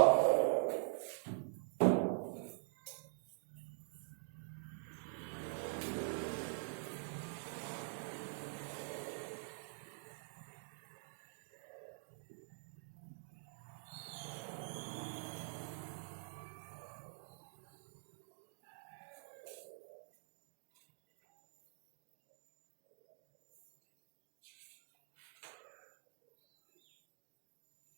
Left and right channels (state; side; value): silent; left; digital silence